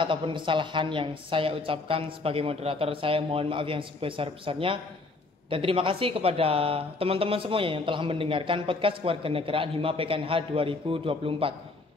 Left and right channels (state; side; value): quieter; right; 3.5 dB